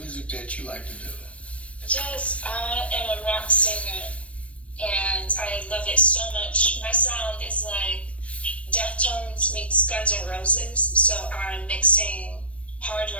that you like to do. Yes, I am a rock singer, and I love it so much. My sound is like Deftones meets Guns N' Roses, so I'm mixing hard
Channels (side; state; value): right; late; 0.063 ms